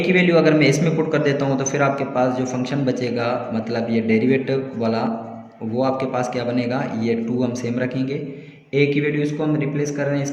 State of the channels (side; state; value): both; identical; correlation 1.00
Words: की वैल्यू अगर मैं इसमें पुट कर देता हूँ तो फिर आपके पास जो फंक्शन बचेगा, मतलब ये डेरिवेटिव वाला, वो आपके पास क्या बनेगा, ये 2 हम सेम रखेंगे। a की वैल्यू इसको हम रिप्लेस कर रहे हैं